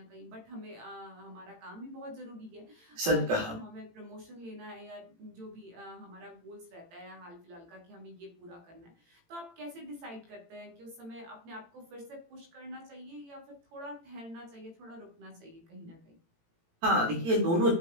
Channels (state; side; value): late; left; 18 ms